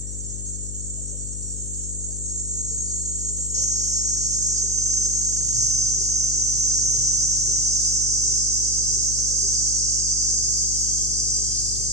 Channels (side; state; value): left; noise; hum, 7 dB below the sound